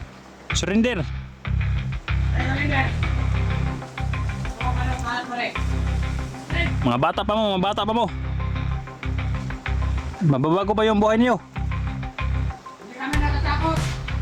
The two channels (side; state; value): both; identical; correlation 1.00